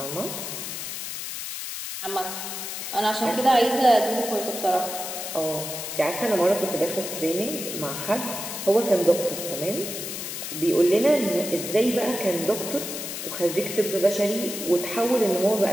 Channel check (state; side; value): noise; left; hiss, 6 dB below the sound